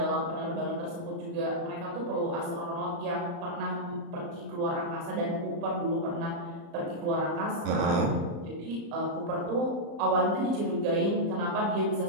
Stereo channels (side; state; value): left; late; 35 ms